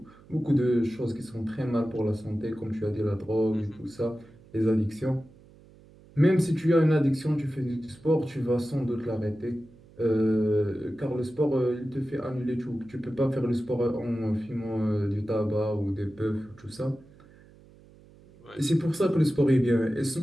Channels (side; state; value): right; noise; hum, 25 dB below the sound